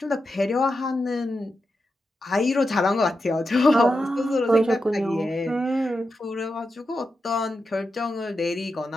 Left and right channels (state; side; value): normal; both; correlation 0.88